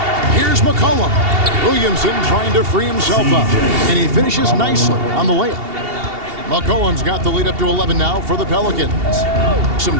Here's McCollum. Williamson trying to free himself up, and he finishes nicely on the layup. McCollum's got the lead up to 11 now for the Pelicans. Some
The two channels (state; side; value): late; left; 2.8 ms